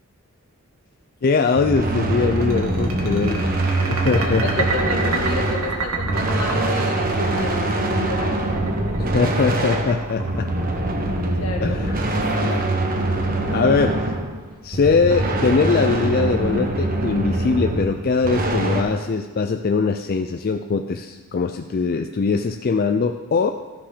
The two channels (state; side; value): normal; both; correlation 0.35